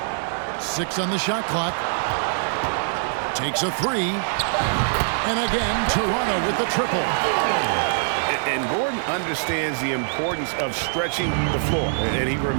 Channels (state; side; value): silent; left; 61 dB below the other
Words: 6 on the shot clock. Takes a 3. And again, Toronto with the triple. And Gordon understands the importance of stretching the floor. And he